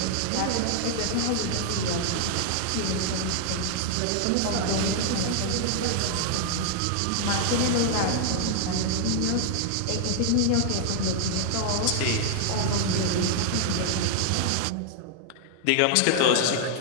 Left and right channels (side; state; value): both; different; correlation 0.00